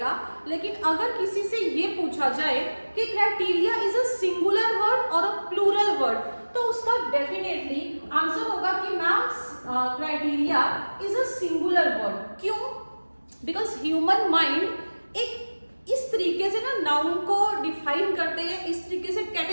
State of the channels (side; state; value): both; inverted; correlation -1.00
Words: लेकिन अगर किसी से ये पूछा जाए कि criteria is a singular word और अ प्लूरल वर्ड, तो उसका डेफिनेटली आंसर होगा कि ma'am criteria is a singular word. क्यों? बिकॉज ह्यूमन माइंड एक इस तरीके से ना नाउन को डिफाइन करते हैं, इस तरीके से